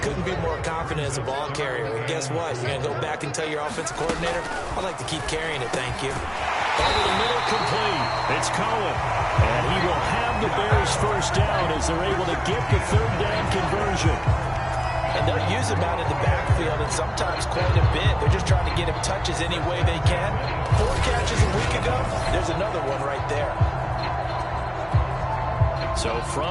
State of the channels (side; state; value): both; identical; correlation 1.00